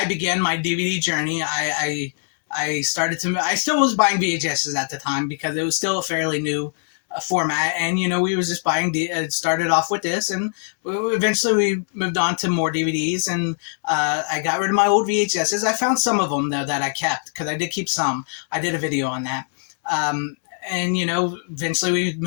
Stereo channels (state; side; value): silent; right; digital silence